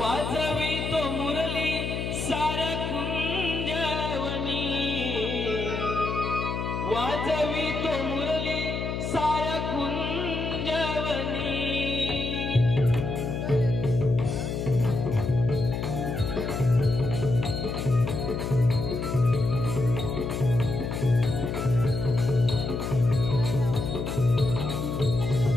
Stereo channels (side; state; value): left; noise; hum, 3 dB below the sound